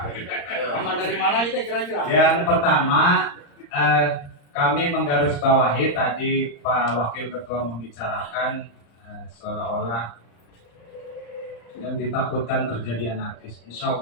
Paman dari mana itu kira-kira? Yang pertama, kami menggarisbawahi tadi Pak Wakil Ketua membicarakan seolah-olah yang ditakutkan terjadi anarkis. Insya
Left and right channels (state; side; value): late; right; 35 ms